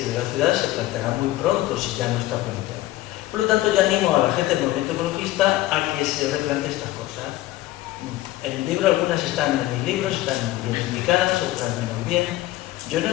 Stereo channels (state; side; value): quieter; right; 16.4 dB